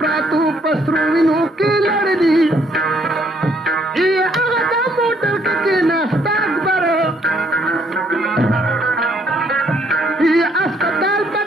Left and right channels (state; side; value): normal; both; correlation 0.68